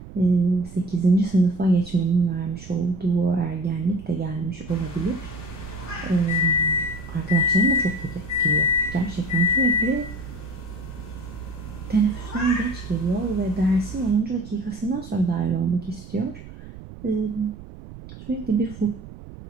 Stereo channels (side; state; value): right; noise; rumble, 15 dB below the sound